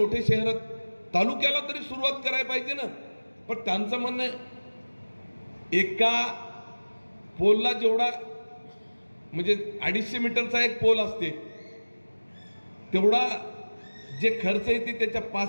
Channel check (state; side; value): inverted; both; correlation -1.00